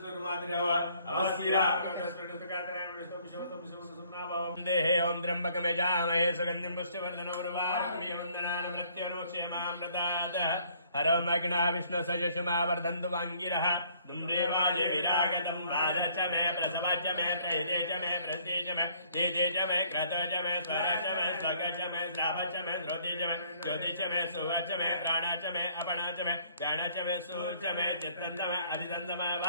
अवस्थिरा देहे ओम त्र्यंबकमेजामहे सुगन्धिं पुष्टिवर्धनं उर्वारुकमिह वन्दनान् मृत्युनुक्षेमां प्रदातः हरं अग्ना विष्णु सजशमा वर्धन्तु वाङ्गिरः दुम्रेवाजे विरागतं वादच मे प्रसवच मे प्रहिते च मे प्रस्ते च मे देदे च मे क्रत च मे स्वर च मे स्वग च मे श्राव च मे श्रोति च मे ज्योति च मे सुव च मे प्राण च मे अपण च मे ज्ञान च मे सूर च मे चित्तं च मे अधितं च मे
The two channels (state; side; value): inverted; both; correlation -0.61